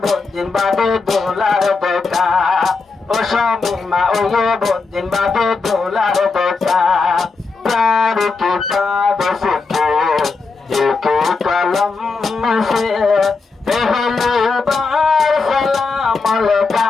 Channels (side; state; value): right; quieter; 4.3 dB